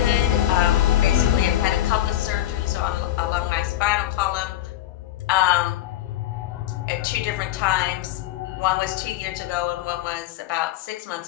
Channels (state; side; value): quieter; right; 13.4 dB